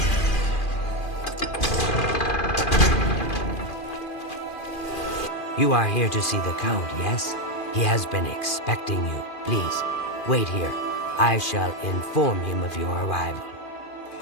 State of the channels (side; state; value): right; late; 2.4 ms